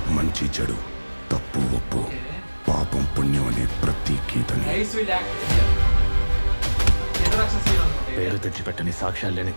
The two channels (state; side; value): inverted; both; correlation -1.00